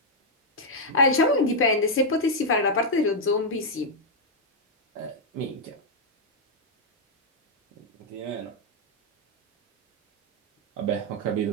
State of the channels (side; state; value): both; normal; correlation -0.03